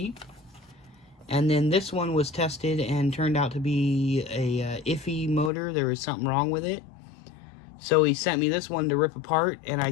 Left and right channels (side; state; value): right; drops out; at 5.5 s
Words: And then this one was tested and turned out to be a iffy motor. There was something wrong with it. So he sent me this one to rip apart, and I